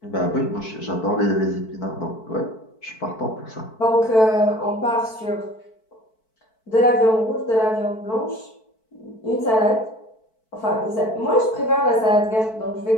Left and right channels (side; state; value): right; late; 4.5 ms